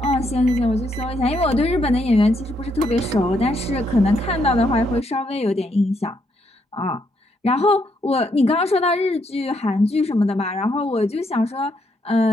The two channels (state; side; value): normal; both; correlation 0.75